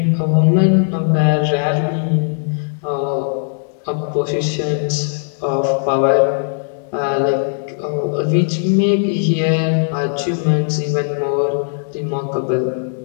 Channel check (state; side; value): silent; right; digital silence